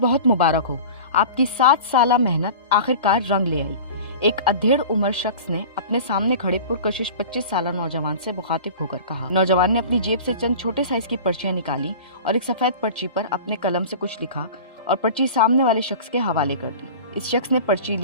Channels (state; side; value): inverted; both; correlation -0.37